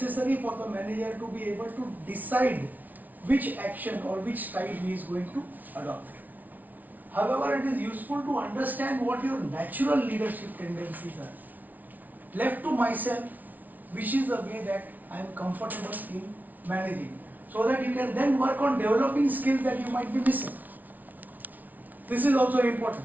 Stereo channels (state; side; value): late; left; 0.078 ms